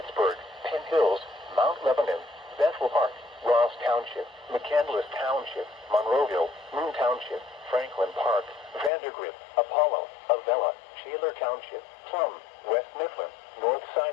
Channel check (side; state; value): right; drops out; at 8.9 s